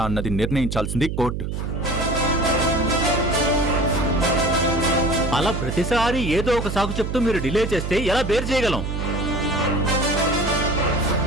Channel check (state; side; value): noise; right; hum, 4 dB below the sound